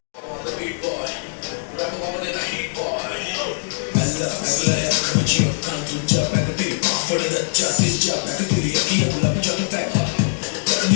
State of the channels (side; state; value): right; silent; digital silence